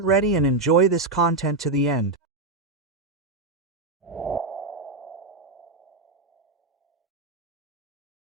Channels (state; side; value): quieter; left; 3.3 dB